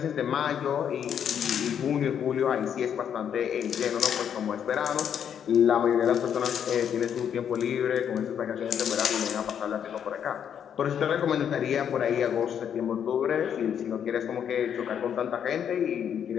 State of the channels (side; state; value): right; quieter; 8.6 dB